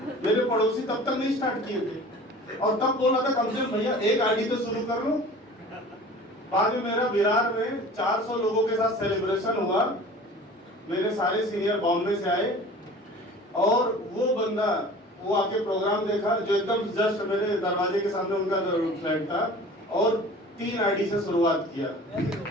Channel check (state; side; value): normal; both; correlation 0.42